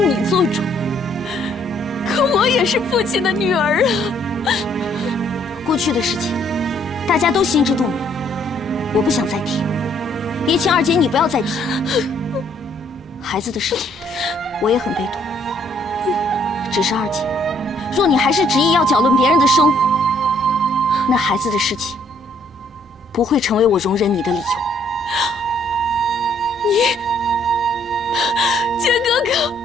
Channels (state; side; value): normal; both; correlation 0.65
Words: 做主，可我也是父亲的女儿啊。过去的事情，大家都心知肚明，我不想再提，也请二姐你不要再提。孩子的事情，我也很悲痛。只是二姐，若你还是执意要搅乱别人的生活，那孩子的事情不会成为我容忍你的理由。你，坚哥哥，